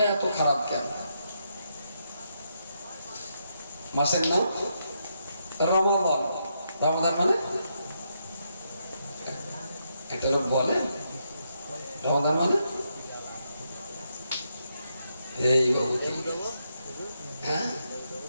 এত খারাপ কেন? মাসের নাম রমাদান। রমাদান মানে এটা লোক বলে রমাদান মানে এই বাবু, হ্যাঁ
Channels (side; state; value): both; inverted; correlation -0.80